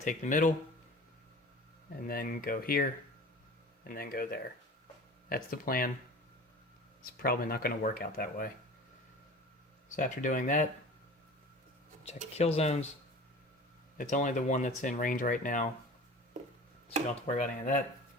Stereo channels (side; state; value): both; normal; correlation 0.39